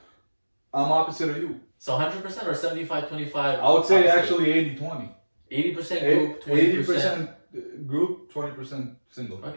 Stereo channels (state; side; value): inverted; both; correlation -1.00